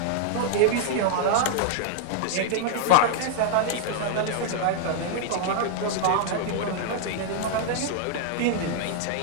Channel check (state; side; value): different; both; correlation -0.01